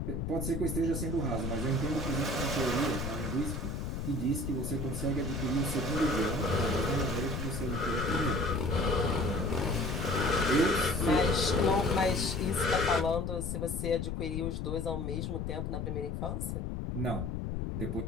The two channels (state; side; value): noise; left; rumble, 3 dB below the sound